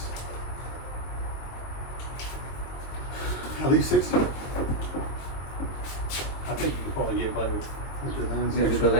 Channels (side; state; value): right; late; 22 ms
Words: 60. I think you could probably get by with the lens. With the extra,